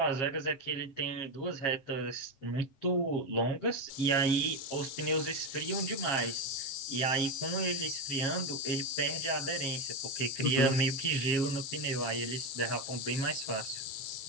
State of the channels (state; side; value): late; right; 7.4 ms